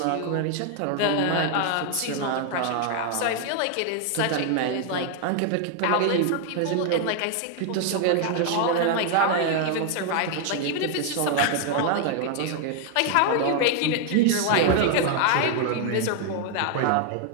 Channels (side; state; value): both; different; correlation 0.00